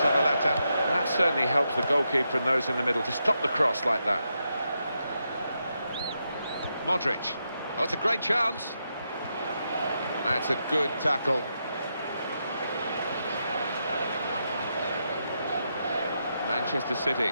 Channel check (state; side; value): inverted; both; correlation -0.83